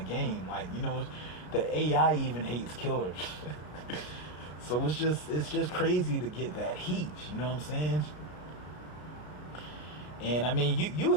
Like, the AI even hates Killer. So it's just crazy to get that heat. You know what I'm saying? And I mean, you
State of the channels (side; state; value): right; late; 33 ms